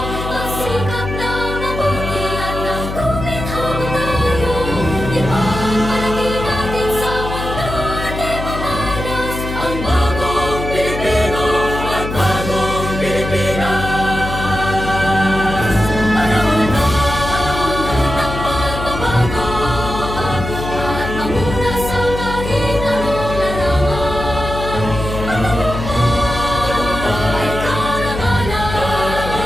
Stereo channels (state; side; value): noise; left; hum, 6 dB below the sound